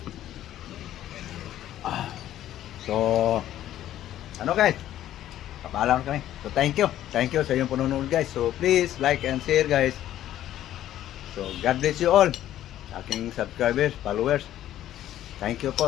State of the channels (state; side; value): quieter; right; 12.5 dB